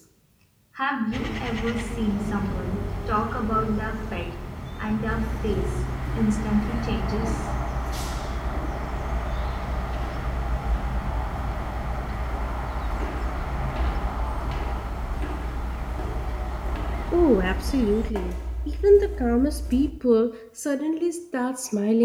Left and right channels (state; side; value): identical; both; correlation 1.00